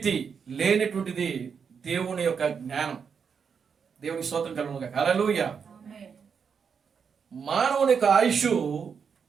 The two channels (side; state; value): left; quieter; 6.4 dB